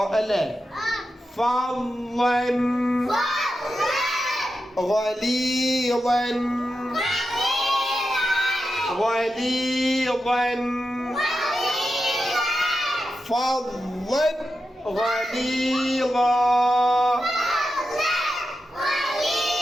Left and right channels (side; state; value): both; normal; correlation 0.89